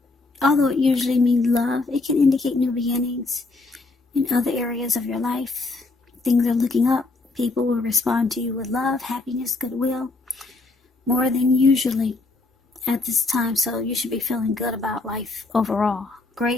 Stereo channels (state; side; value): quieter; right; 3.5 dB